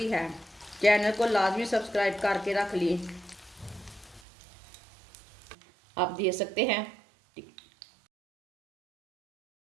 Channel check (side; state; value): left; drops out; at 4.2 s